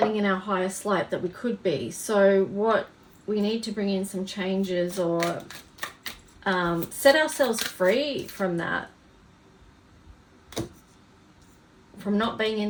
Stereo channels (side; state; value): both; identical; correlation 1.00